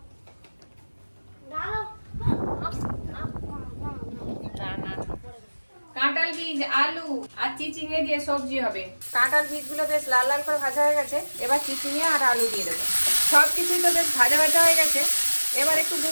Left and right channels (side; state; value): both; inverted; correlation -1.00